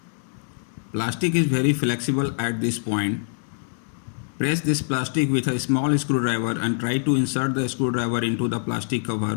Plastic is very flexible at this point. Press this plastic with a small screwdriver and try to insert the screwdriver into the plastic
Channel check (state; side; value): silent; right; digital silence